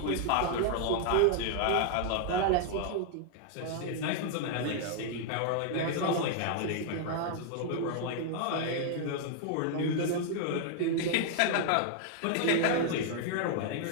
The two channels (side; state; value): both; different; correlation 0.00